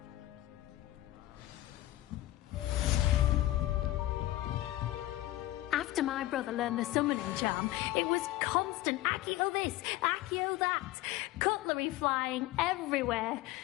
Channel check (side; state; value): right; quieter; 16.1 dB